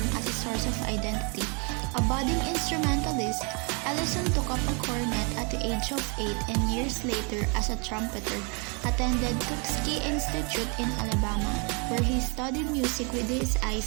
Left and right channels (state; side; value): quieter; left; 34.0 dB